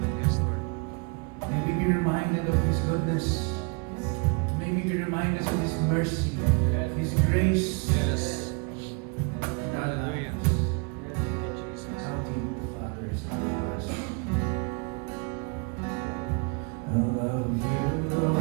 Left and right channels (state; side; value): quieter; left; 34.0 dB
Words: Yes, Lord. May we be reminded of His goodness. May we be reminded of His mercy, His grace. Yes. in our Hallelujah. lives. Thank you, Jesus. How deep the Father is loving us. I love you,